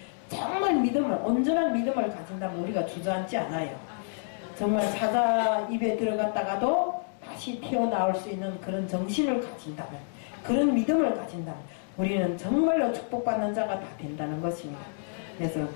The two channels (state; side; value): silent; right; digital silence